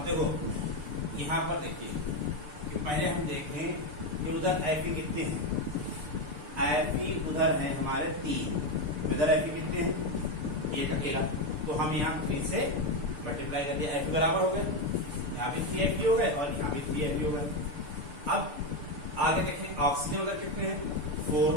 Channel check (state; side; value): late; left; 6.8 ms